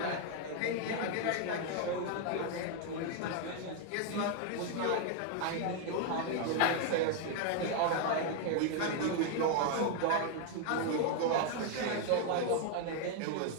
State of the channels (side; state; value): both; different; correlation 0.00